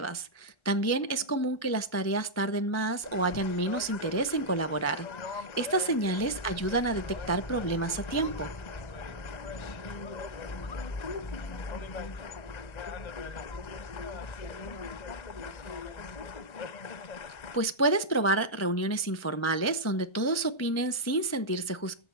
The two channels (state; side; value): late; right; 1.3 ms